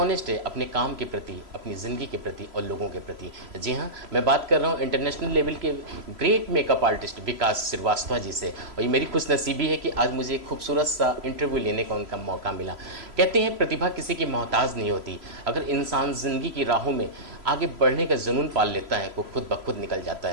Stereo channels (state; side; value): late; left; 3.0 ms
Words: है अपने काम के प्रति, अपनी ज़िंदगी के प्रति और लोगों के प्रति। जी हाँ, मैं बात कर रहा हूँ इंटरनेशनल लेवल के ग्रेट मेकअप आर्टिस्ट विकास श्रीवास्तव जी से। और ये मेरी खुशनसीबी है कि आज मुझे एक खूबसूरत सा इंटरव्यू लेने का उनका मौका मिला। कहते हैं प्रतिभा किसी की मोहताज नहीं होती। अगर इंसान ज़िंदगी की राहों में आगे बढ़ने का जुनून पाल लेता है वो खुद ब खुद निकल जाता